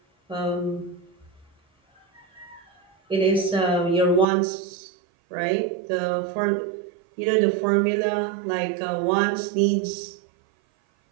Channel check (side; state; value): left; drops out; at 4.2 s